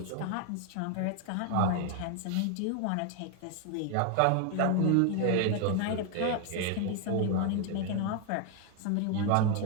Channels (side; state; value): both; different; correlation 0.01